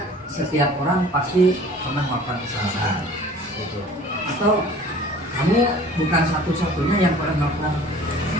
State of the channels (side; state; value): both; normal; correlation 0.47